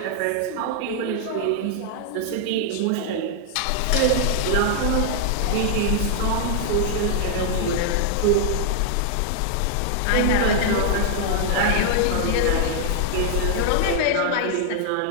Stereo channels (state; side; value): different; both; correlation 0.00